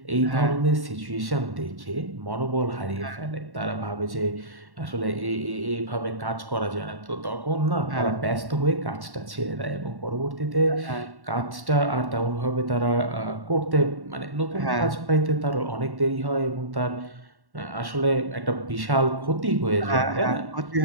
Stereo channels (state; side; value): late; left; 1.1 ms